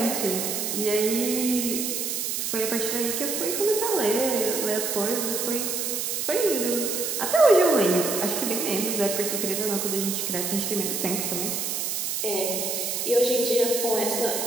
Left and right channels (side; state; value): right; noise; hiss, 1 dB below the sound